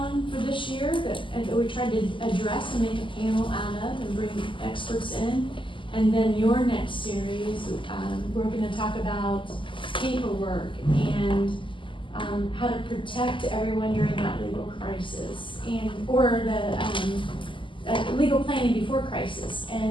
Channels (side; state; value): right; late; 0.25 ms